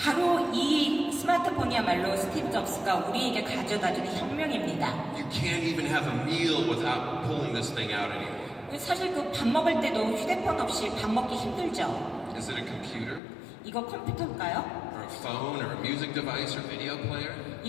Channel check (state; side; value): drops out; right; at 13.2 s